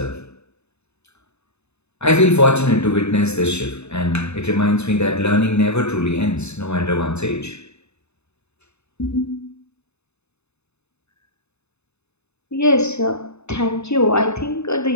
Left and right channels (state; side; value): late; right; 0.81 ms